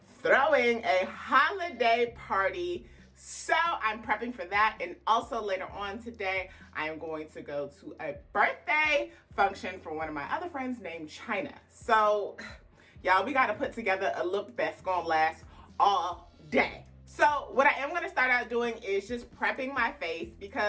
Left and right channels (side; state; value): both; identical; correlation 1.00